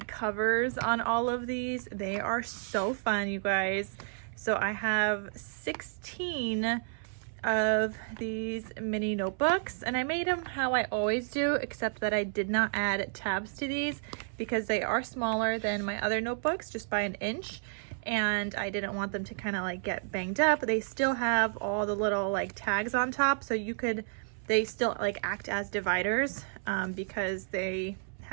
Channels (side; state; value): left; silent; 57 dB below the other